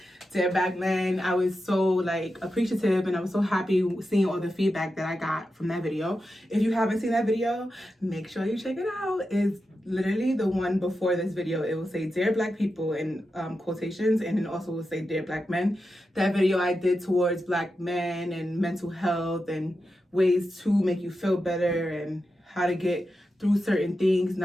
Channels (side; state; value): both; normal; correlation 0.90